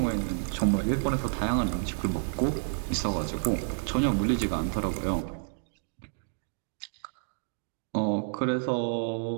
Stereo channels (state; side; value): silent; left; digital silence